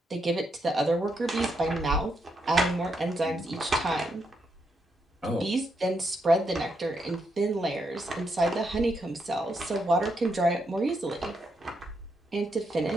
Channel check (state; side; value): normal; both; correlation 0.80